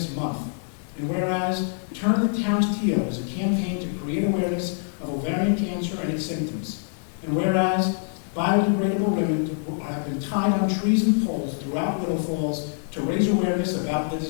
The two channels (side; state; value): right; silent; digital silence